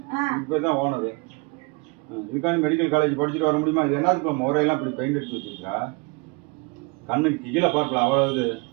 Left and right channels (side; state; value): left; quieter; 28.2 dB